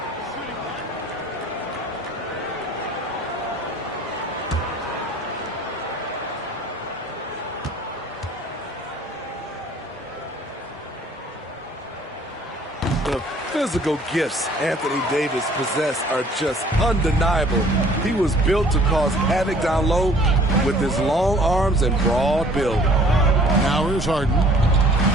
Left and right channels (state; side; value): normal; both; correlation 0.54